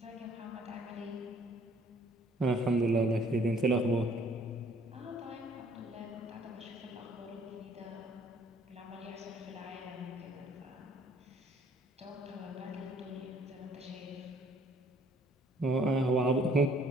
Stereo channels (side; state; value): both; normal; correlation 0.59